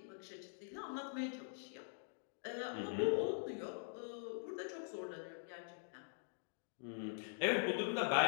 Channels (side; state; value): right; silent; digital silence